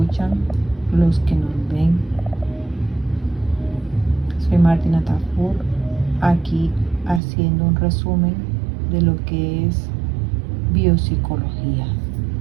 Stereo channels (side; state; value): left; drops out; at 7.2 s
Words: los que nos ven. Soy Martina Tafur, aquí haciendo un resumen de lo que es biopsicología